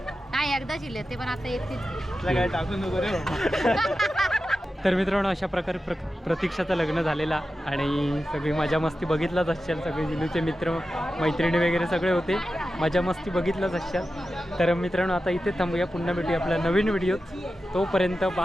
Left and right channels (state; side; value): normal; both; correlation 0.92